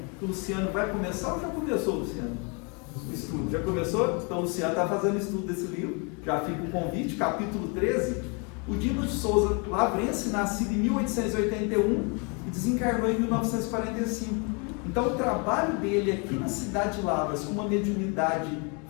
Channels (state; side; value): quieter; right; 33.6 dB